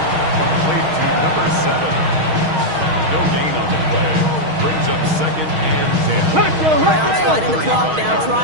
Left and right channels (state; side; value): late; left; 6.4 ms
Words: Complete to number 7. No gain on the play. Brings up 2nd and 10. Browns fighting the clock now.